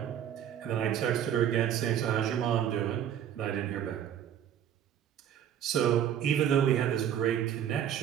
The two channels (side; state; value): left; quieter; 9.9 dB